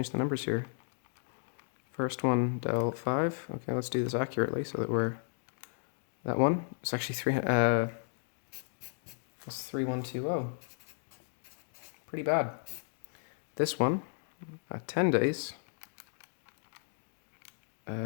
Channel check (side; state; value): right; silent; digital silence